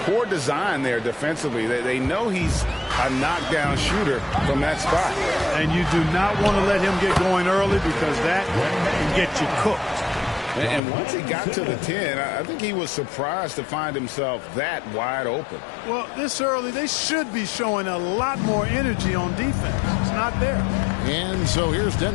Poor design there defensively. They know he's a knockdown shooter from that spot. And you do not want to let him get going early because that can get you cooked. And once he got to the 10, I think he was surprised to find himself that wide open. Well, this early, they should be showing a lot more energy on defense. It's not there. And so here's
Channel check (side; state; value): right; drops out; at 10.8 s